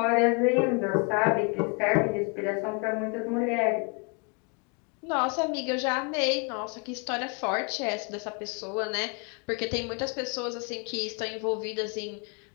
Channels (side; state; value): right; quieter; 33.4 dB